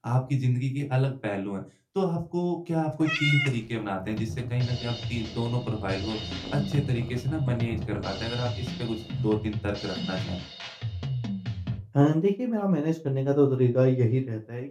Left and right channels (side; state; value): both; identical; correlation 1.00